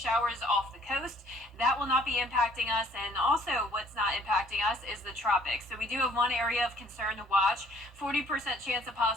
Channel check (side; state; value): both; normal; correlation 0.59